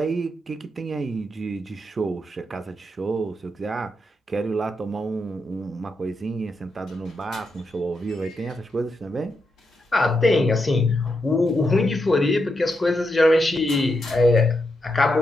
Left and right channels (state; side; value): normal; both; correlation 0.83